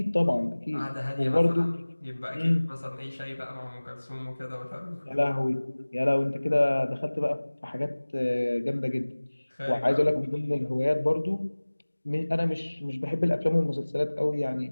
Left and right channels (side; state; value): both; inverted; correlation -1.00